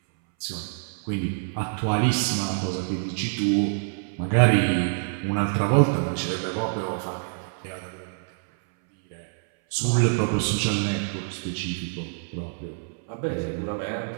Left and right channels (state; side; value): silent; left; 59 dB below the other